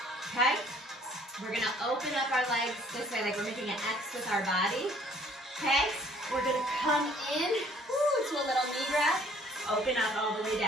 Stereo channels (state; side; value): normal; both; correlation 0.58